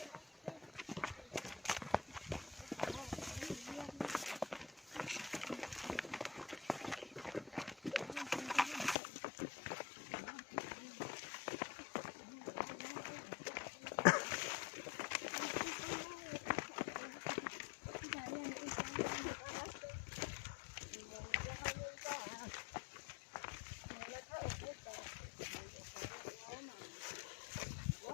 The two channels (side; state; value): right; drops out; at 9.0 s